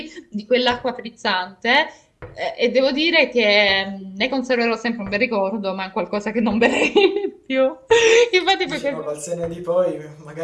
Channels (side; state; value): both; identical; correlation 1.00